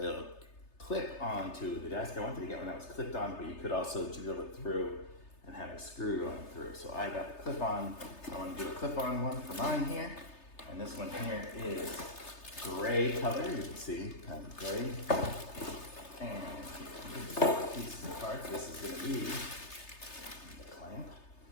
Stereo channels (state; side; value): late; right; 3.3 ms